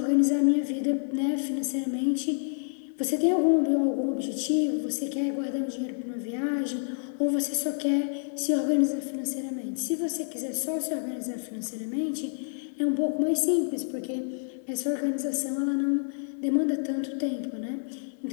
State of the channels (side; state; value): right; silent; digital silence